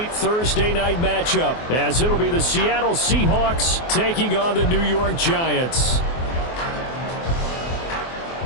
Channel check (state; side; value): late; right; 24 ms